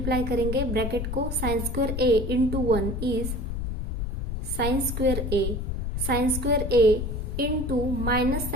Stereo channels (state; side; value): noise; left; rumble, 3 dB below the sound